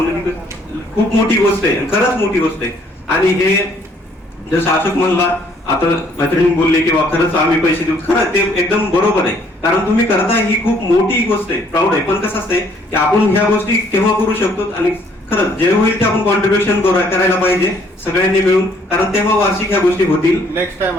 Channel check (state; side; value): normal; both; correlation 0.63